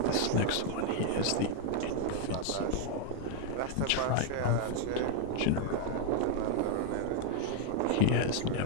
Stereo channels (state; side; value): different; both; correlation 0.00